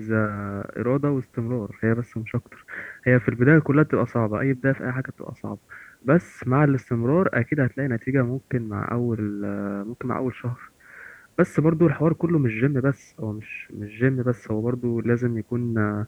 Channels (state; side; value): identical; both; correlation 1.00